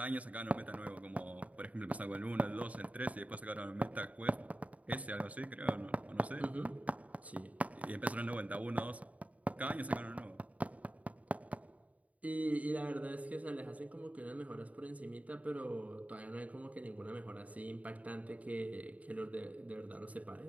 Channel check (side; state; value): left; late; 0.069 ms